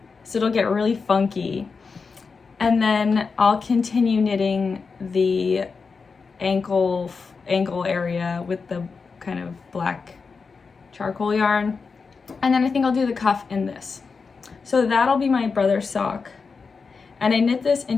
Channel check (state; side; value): quieter; right; 4.9 dB